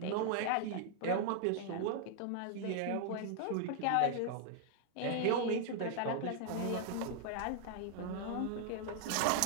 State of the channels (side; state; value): both; different; correlation 0.00